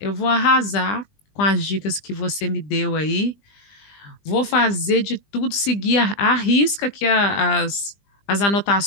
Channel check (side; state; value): right; late; 20 ms